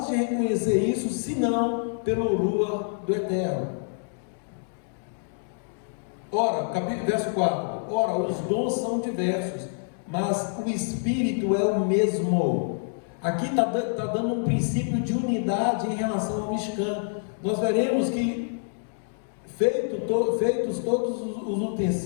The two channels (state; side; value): silent; right; digital silence